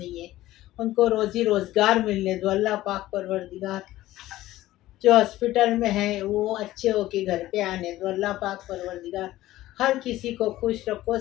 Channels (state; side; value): quieter; right; 15.7 dB